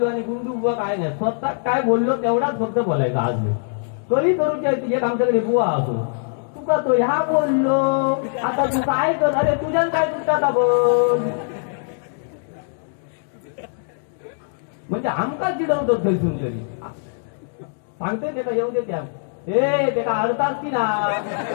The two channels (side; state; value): right; silent; digital silence